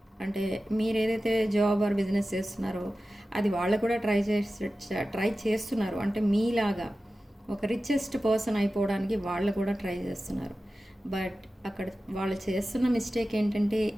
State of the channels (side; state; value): both; normal; correlation 0.94